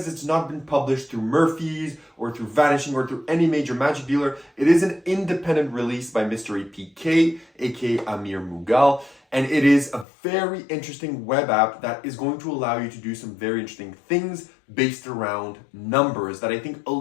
it's not been published through Murphy's or through Vanishing or through any major magic dealer. It is an independent release by MysteryPK, aka Amir Mughal. And it is a very interesting web app that is going to allow you to do some very interesting things based around numbers that I think a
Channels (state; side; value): drops out; right; at 10.1 s